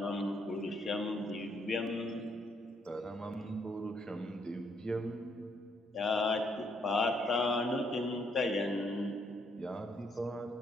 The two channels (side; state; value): both; normal; correlation 0.72